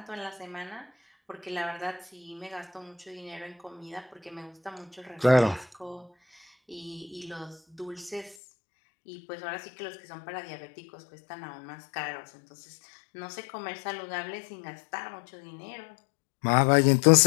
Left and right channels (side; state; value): right; drops out; at 8.3 s